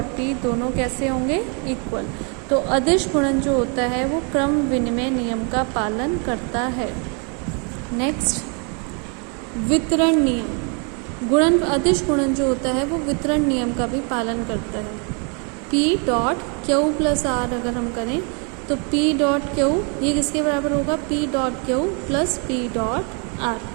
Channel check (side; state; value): left; quieter; 36.7 dB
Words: पी दोनों कैसे होंगे, इक्वल। तो अदिश गुणन जो होता है वो क्रम विनिमय नियम का पालन करता है। नेक्स्ट वितरण नियम, गुणन अदिश गुणन जो होता है वो वितरण नियम का भी पालन करता है। P dot Q plus R अगर हम करें तो P डॉट क्यू ये किसके बराबर होगा, P dot Q plus P dot are